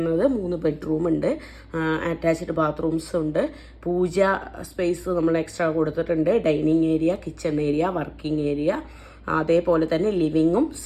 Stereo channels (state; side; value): identical; both; correlation 1.00